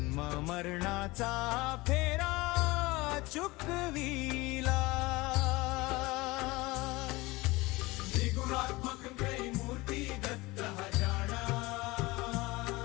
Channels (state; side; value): quieter; right; 21.8 dB